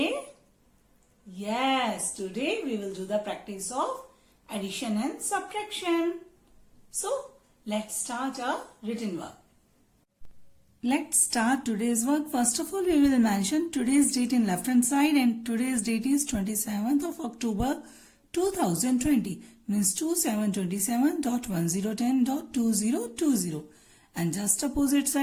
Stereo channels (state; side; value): identical; both; correlation 1.00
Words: Yes, today we will do the practice of addition and subtraction. So, let's start our written work. Let's start today's work. First of all, we will mention today's date in left hand side, and today's date is 27th of October 2020, means 2727.1010.2020, and just opposite